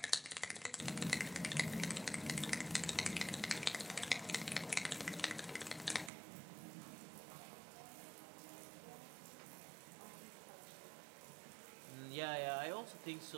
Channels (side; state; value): left; drops out; at 6.1 s